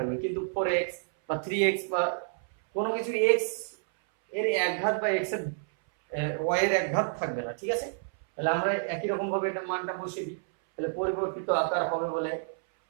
কিন্তু 4x বা 3x বা কোনো কিছু x এর একঘাত বা x এর y এর একঘাত থাকবে না। ঠিক আছে, তাহলে আমরা একই রকম ভাবে এটা মানটা বসিয়ে দিই। তাহলে পরিবর্তিত আকার হবে বলে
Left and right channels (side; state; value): left; silent; 58 dB below the other